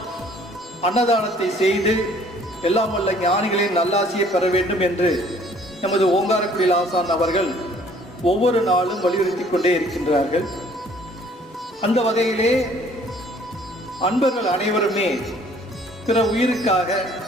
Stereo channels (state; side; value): normal; both; correlation 0.57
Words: அன்னதானத்தை செய்து எல்லாம் வல்ல ஞானிகளின் நல்லாசியை பெற வேண்டும் என்று நமது ஓங்காரக்குடில் ஆசான் அவர்கள் ஒவ்வொரு நாளும் வலியுறுத்தி கொண்டே இருக்கின்றார்கள். அந்த வகையிலே அன்பர்கள் அனைவருமே பிற உயிருக்காக,